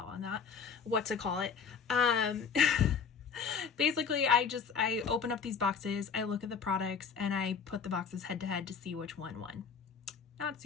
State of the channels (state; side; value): quieter; right; 6.1 dB